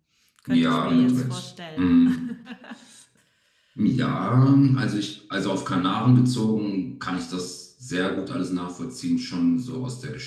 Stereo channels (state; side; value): identical; both; correlation 1.00